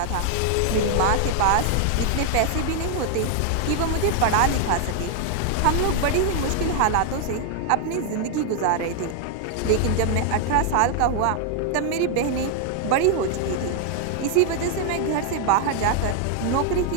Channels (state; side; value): different; both; correlation 0.00